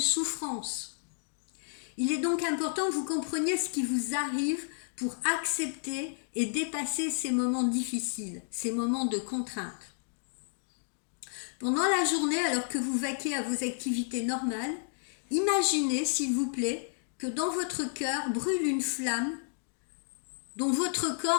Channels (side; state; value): right; silent; digital silence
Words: Il est donc important que vous compreniez ce qui vous arrive pour accepter et dépasser ces moments difficiles, ces moments de contrainte. Pendant la journée, alors que vous vaquez à vos activités normales, imaginez, s'il vous plaît, que dans votre cœur brûle une flamme dont votre